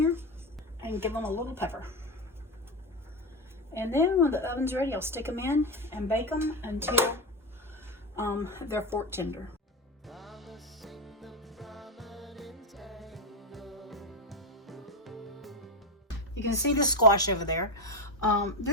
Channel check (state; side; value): normal; both; correlation 0.13